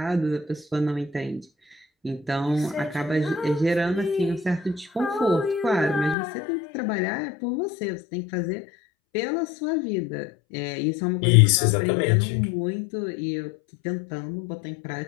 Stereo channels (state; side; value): drops out; right; at 6.2 s